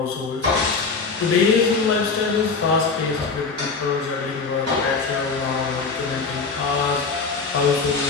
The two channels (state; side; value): quieter; right; 4.6 dB